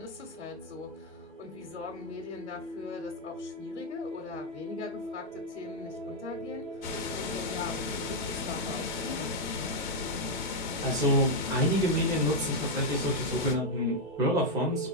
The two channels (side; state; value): both; normal; correlation 0.00